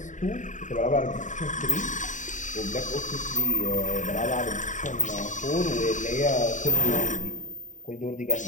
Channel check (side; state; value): right; late; 0.36 ms